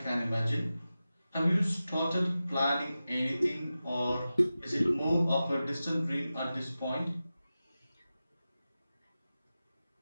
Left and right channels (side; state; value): both; inverted; correlation -0.94